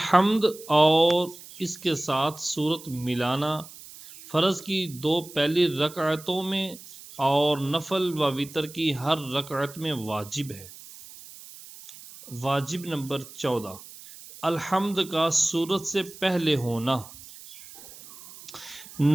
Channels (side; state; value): right; noise; hiss, 17 dB below the sound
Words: اور اس کے ساتھ سورت ملانا فرض کی 2 پہلی رکعتوں میں اور نفل و وتر کی ہر رکعت میں واجب ہے۔ واجب نمبر 14، الحمد کا سورت سے پہلے ہونا۔